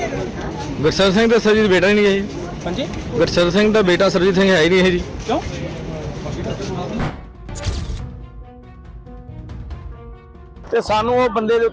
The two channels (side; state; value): both; identical; correlation 1.00